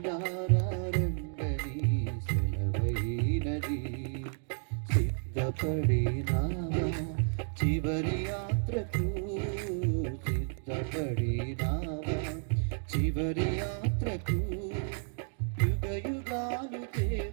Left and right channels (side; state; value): left; silent; 57 dB below the other